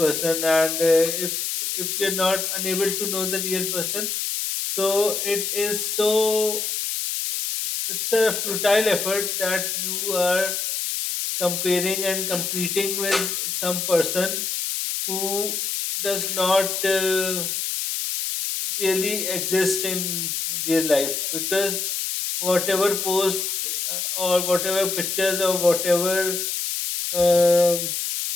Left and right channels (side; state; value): left; noise; hiss, 2 dB below the sound